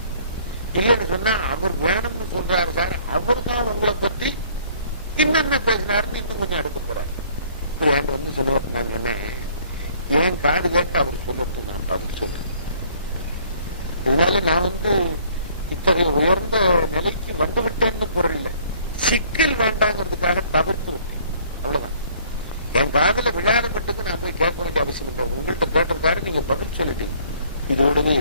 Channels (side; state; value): both; inverted; correlation -0.58